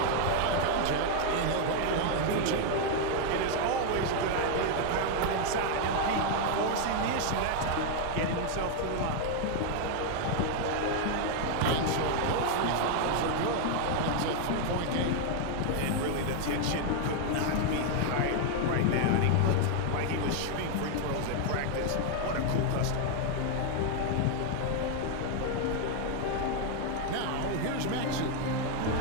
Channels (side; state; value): both; different; correlation 0.00